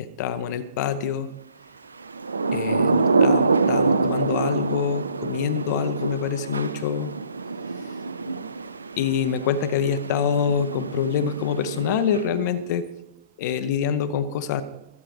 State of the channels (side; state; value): both; inverted; correlation -0.51